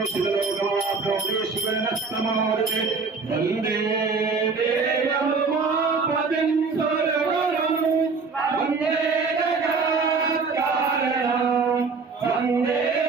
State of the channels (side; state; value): left; quieter; 4.6 dB